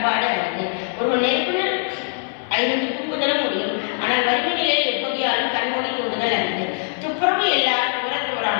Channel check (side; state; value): right; silent; 64 dB below the other